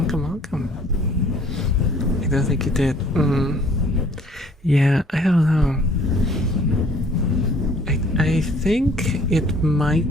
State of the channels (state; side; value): normal; both; correlation 0.56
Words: I don't think you did. Yeah, I don't know. I think it